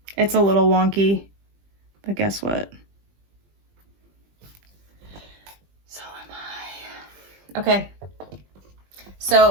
It's a little wonky, but guess what? So am I. Okay.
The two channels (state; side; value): late; left; 20 ms